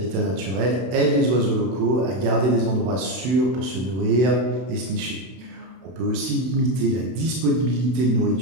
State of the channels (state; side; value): late; left; 32 ms